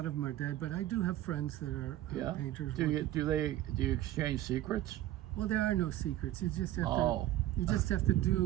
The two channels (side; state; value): left; quieter; 14.1 dB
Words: of them are dead, but I do have friends that are painters. Do you exchange secrets? Well, there are no secrets. You just have Oh. to. You just have to